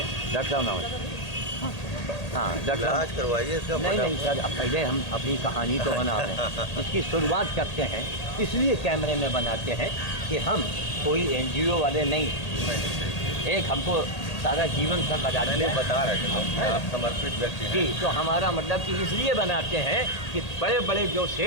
डॉक्टर साहब नमस्ते। हाँ डॉक्टर साहब इलाज करवाइए इसका। नहीं सर, पहले हम अपनी कहानी तो बना रहे हैं। इसकी शुरुआत करते हैं, इसलिए कैमरे में बनाते हैं कि हम कोई NGO वाले नहीं। एक हमको सारा जीवन सर लगा मैंने बता रहे थे आप समर्पित व्यक्ति हैं। जी, तो हमारा मतलब कि इसलिए बनाते हैं कि बड़े बड़े जो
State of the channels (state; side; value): late; right; 1.8 ms